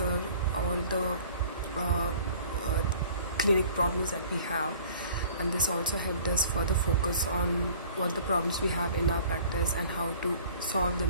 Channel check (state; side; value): inverted; both; correlation -0.50